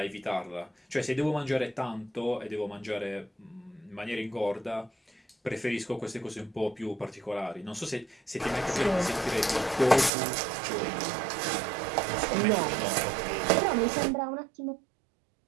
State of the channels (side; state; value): left; drops out; at 10.1 s